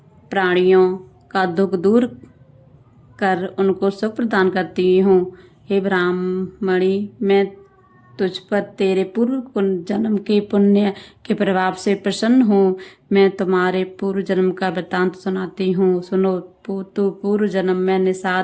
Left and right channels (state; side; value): identical; both; correlation 1.00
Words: प्राणियों का दुख दूर कर उनको सुख प्रदान करती हूँ। हे ब्राह्मणी, मैं तुझ पर तेरे पूर्व जन्म के पुण्य के प्रभाव से प्रसन्न हूँ। मैं तुम्हारे पूर्व जन्म का वृत्तांत सुनाती हूँ, सुनो। तो पूर्व जन्म में